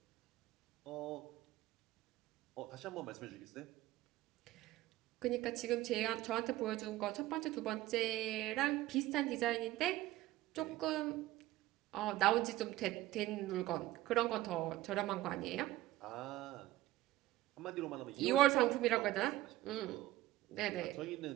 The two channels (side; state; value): left; quieter; 16.2 dB